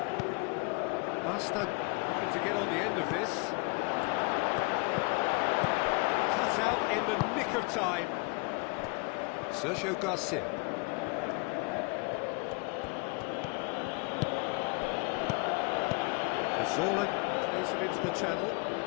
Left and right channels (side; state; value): right; quieter; 30.0 dB